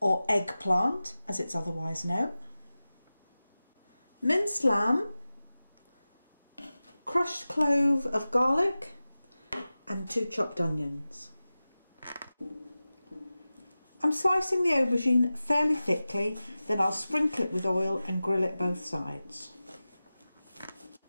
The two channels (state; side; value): inverted; both; correlation -0.96